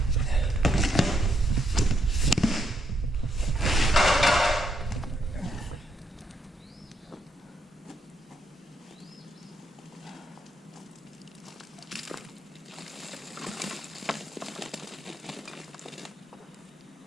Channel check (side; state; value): both; normal; correlation 0.76